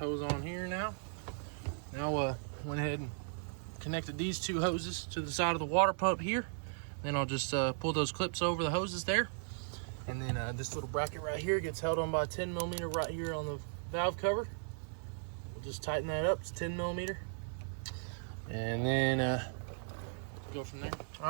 on here now. Now went ahead and connected these two hoses to the side of the water pump here. Then I'll just pull those clips over the hoses there. And then this little bracket right here gets held on by a 10mm right here on the valve cover. We'll just tighten that up. It's 10mm. And then go from there. All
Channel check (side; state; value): left; silent; 53 dB below the other